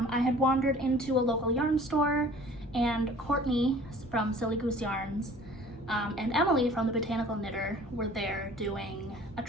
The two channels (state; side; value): normal; both; correlation 0.49